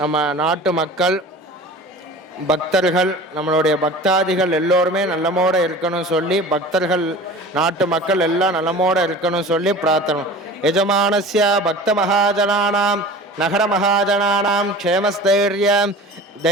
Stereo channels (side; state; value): both; normal; correlation 0.39